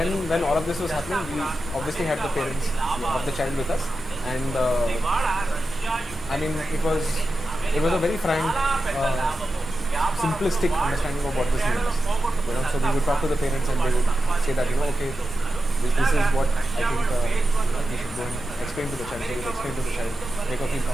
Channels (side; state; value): both; normal; correlation 0.91